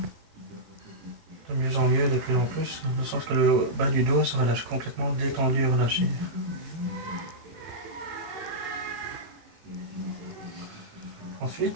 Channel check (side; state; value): left; late; 18 ms